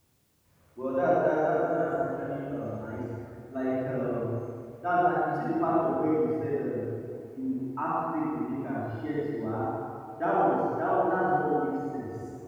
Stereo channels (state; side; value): identical; both; correlation 1.00